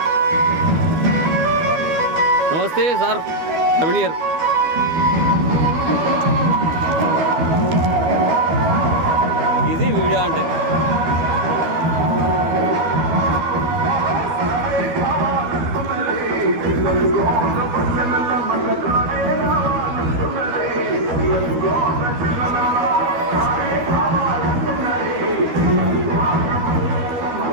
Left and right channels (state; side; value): late; left; 12 ms